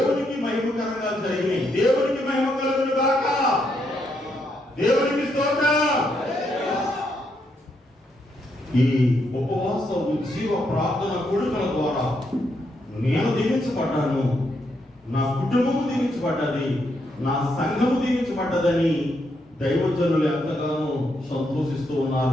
మహిమకరంగా జరిగినాయి. దేవునికి మహిమ కలుగును గాక. దేవునికి స్తోత్రం. ఈ ఉపవాస ఉజ్జీవ ప్రార్థన కూడికల ద్వారా నేను దీవించబడ్డాను, నా కుటుంబము దీవించబడ్డది, నా సంఘము దీవించబడ్డదని దైవజనులు ఎంతగానో సంతోషిస్తూ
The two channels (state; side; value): normal; both; correlation 0.78